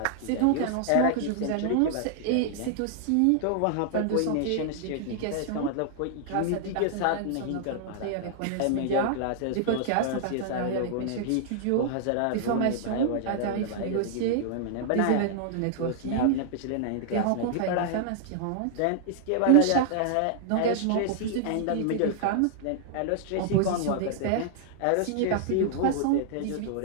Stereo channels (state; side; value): different; both; correlation -0.01